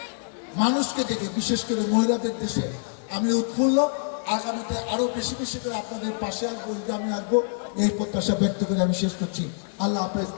মানুষকে দেখে, বিশেষ করে মহিলাদের দেশে আমি উৎফুল্ল। আগামীতে আরো বেশি বেশি করে আপনাদের পাশে আসবো, আমি আসবো, এই প্রত্যাশা ব্যক্ত করে আমি শেষ করছি। আল্লাহ হাফেজ।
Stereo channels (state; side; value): silent; right; 58 dB below the other